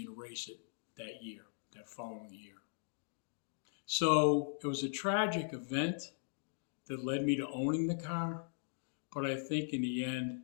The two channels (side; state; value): right; silent; digital silence